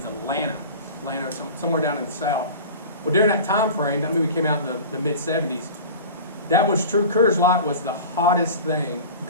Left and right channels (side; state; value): both; inverted; correlation -0.36